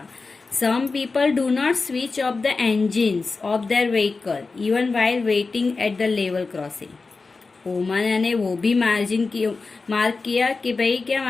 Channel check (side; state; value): right; quieter; 4.1 dB